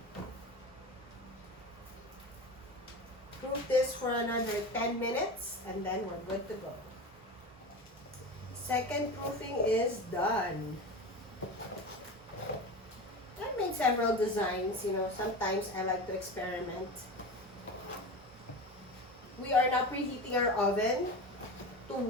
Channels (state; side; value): noise; right; rumble, 28 dB below the sound